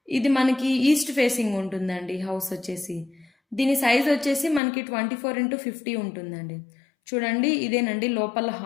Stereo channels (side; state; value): right; drops out; at 4.6 s